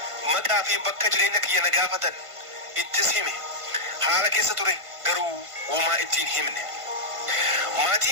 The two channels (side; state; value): left; late; 1.5 ms